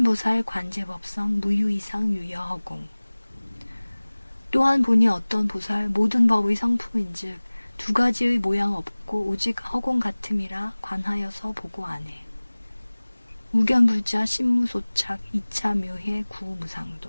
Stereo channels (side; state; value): both; inverted; correlation -1.00